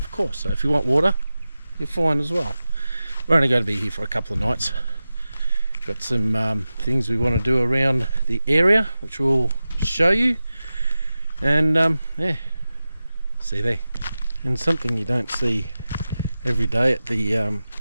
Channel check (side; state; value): both; inverted; correlation -0.94